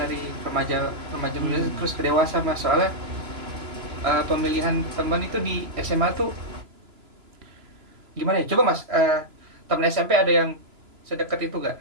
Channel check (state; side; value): late; left; 3.0 ms